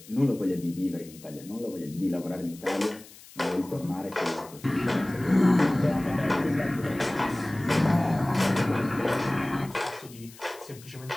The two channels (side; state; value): left; noise; hiss, 20 dB below the sound